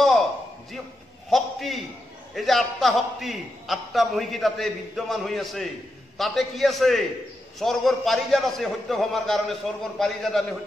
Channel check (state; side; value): normal; both; correlation 0.86